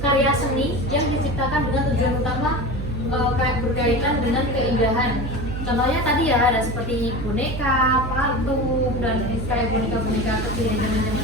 seni yang diciptakan dengan tujuan utama berkaitan dengan keindahan. Contohnya tadi ya ada seperti boneka, patung, dan kayak boneka-boneka kecil yang zaman-zaman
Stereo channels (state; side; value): noise; right; hum, 5 dB below the sound